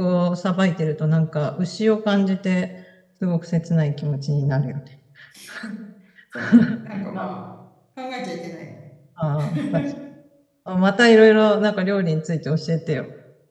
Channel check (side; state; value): both; identical; correlation 1.00